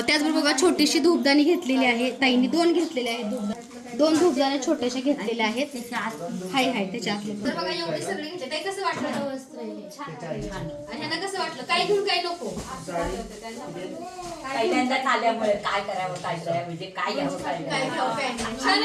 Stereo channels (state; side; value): identical; both; correlation 1.00